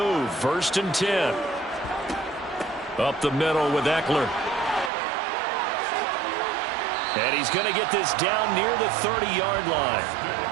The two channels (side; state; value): left; drops out; at 4.9 s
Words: 1st and 10. Up the middle with Eckler. And he's going to get this down near the 30-yard line.